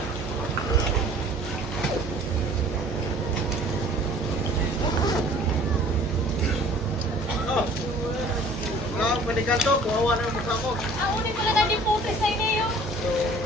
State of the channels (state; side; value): normal; both; correlation 0.50